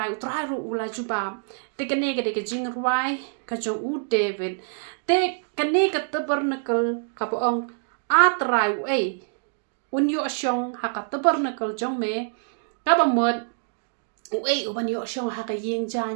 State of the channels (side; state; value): left; silent; digital silence